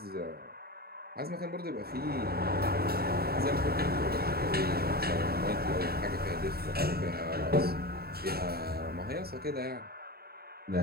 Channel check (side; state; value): left; late; 0.45 ms